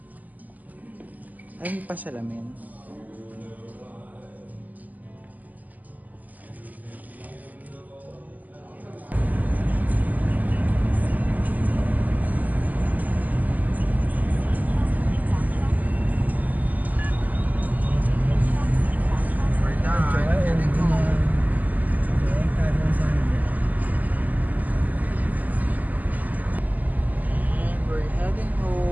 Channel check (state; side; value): late; left; 0.080 ms